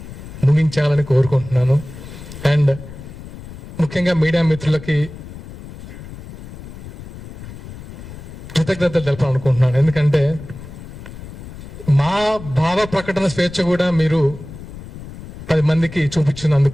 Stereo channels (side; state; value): left; noise; rumble, 14 dB below the sound